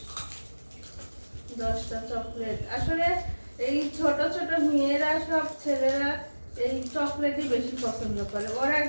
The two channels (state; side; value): inverted; both; correlation -1.00